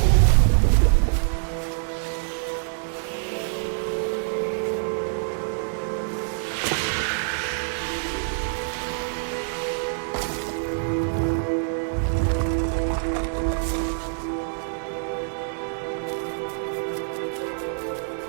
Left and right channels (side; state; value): left; silent; digital silence